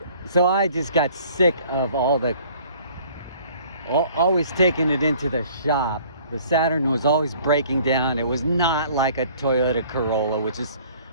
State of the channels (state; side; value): inverted; both; correlation -0.54